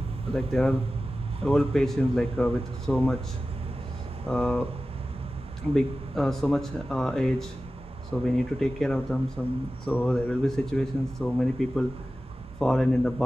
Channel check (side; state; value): both; normal; correlation 0.95